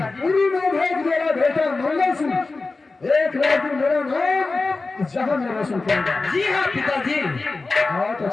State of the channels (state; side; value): quieter; right; 3.7 dB